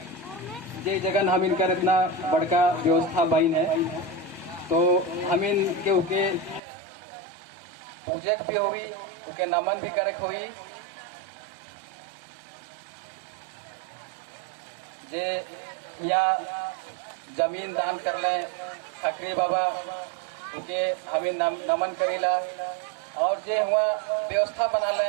जे जगन हम इनकर इतना बड़का व्यवस्था बन है तो हम इनके उके पूजक भी हुई उनके नमन भी करक हुई जे या जमीन दान कर लें खकरी बाबा उनके हम नमन करीला और जे हुआ व्यवस्था बना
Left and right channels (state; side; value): drops out; left; at 6.6 s